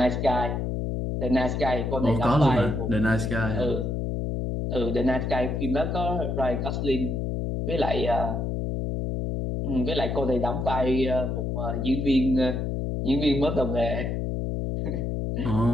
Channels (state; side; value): noise; left; hum, 1 dB below the sound